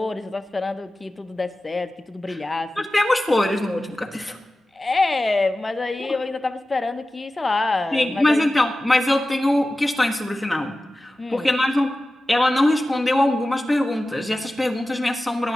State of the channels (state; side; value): normal; both; correlation 0.95